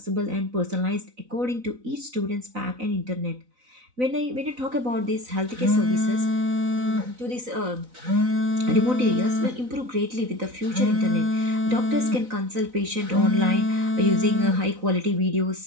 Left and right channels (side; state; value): left; late; 4.0 ms